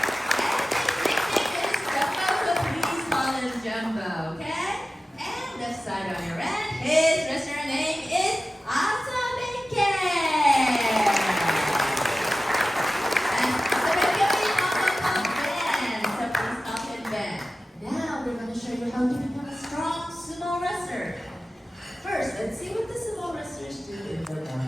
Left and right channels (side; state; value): both; normal; correlation 0.95